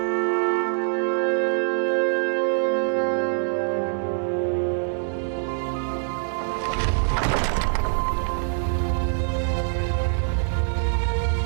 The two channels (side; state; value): left; silent; 62 dB below the other